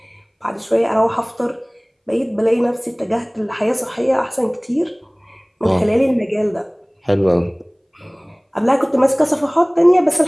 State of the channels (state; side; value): identical; both; correlation 1.00